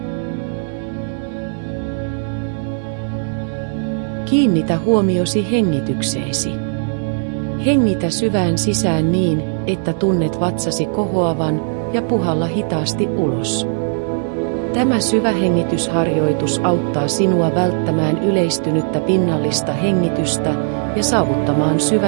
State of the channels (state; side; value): silent; left; 55 dB below the other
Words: Kiinnitä huomiosi hengitykseesi. Hengitä syvään sisään niin, että tunnet vatsasi kohoavan ja puhalla hitaasti ulos. Tämä syvä hengitysharjoitus auttaa sinua välttämään yleistynyttä pinnallista hengitystä ja saavuttamaan